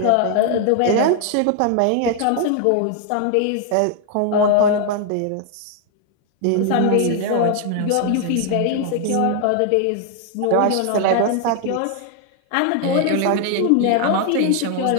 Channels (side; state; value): both; different; correlation 0.00